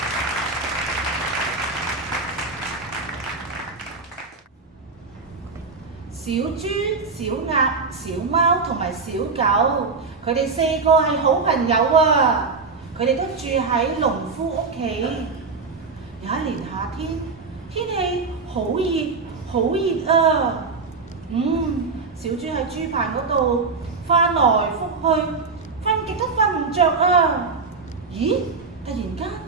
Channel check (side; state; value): left; quieter; 4.4 dB